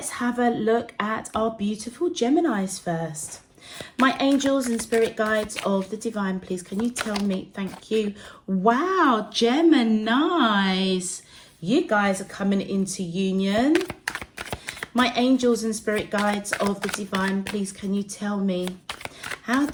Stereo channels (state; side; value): identical; both; correlation 1.00